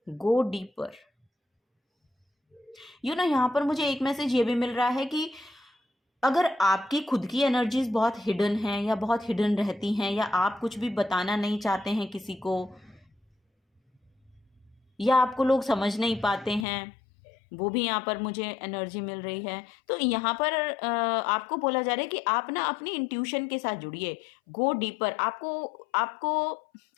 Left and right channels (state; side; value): drops out; right; at 16.7 s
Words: go deeper. यहाँ पर मुझे एक मैसेज ये भी मिल रहा है कि अगर आपकी खुद की एनर्जीज बहुत हिडन हैं या बहुत हिडन रहती हैं, या आप कुछ भी बताना नहीं चाहते हैं किसी को, या आपको लोग समझ नहीं पाते हैं, वो भी यहाँ पर मुझे एनर्जी मिल रही है। तो यहाँ पर आपको बोला जा रहा है कि आप ना अपनी इंट्यूशन के साथ जुड़िए। Go deeper. आपको